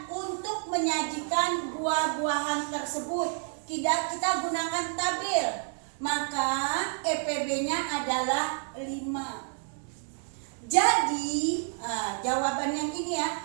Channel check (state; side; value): silent; left; 58 dB below the other